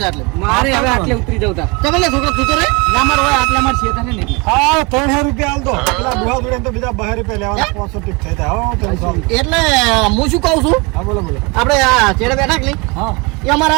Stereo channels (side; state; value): left; quieter; 27.5 dB